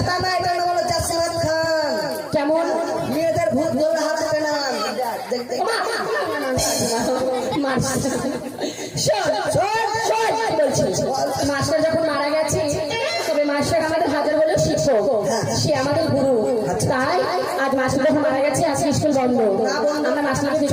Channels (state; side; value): identical; both; correlation 1.00